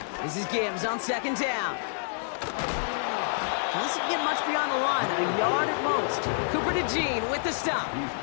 This is Gibbs on second down. Doesn't get much beyond the line, a yard at most. Cooper to Jean with the stop.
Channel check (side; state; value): right; silent; 59 dB below the other